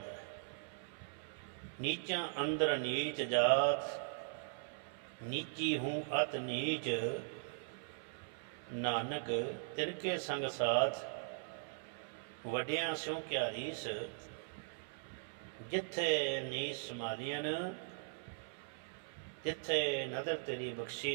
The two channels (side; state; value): left; silent; 51 dB below the other